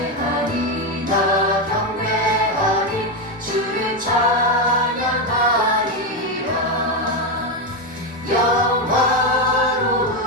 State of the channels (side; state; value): both; normal; correlation 0.09